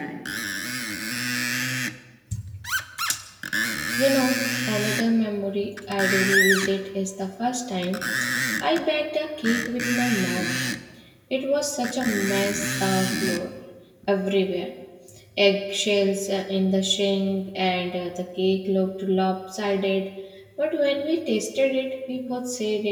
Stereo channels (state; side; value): identical; both; correlation 1.00